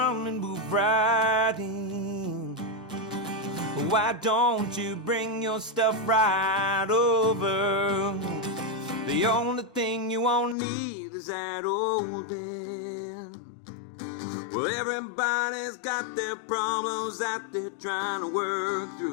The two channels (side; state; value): right; drops out; at 10.6 s